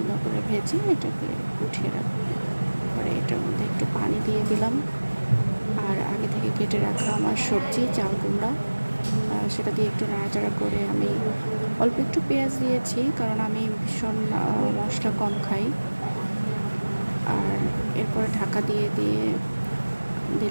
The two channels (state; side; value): inverted; both; correlation -1.00